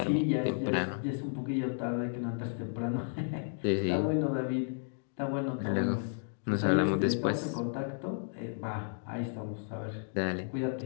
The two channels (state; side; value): silent; right; digital silence